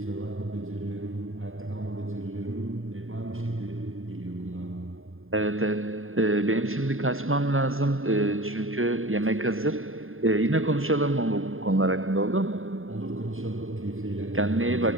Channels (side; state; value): left; late; 0.60 ms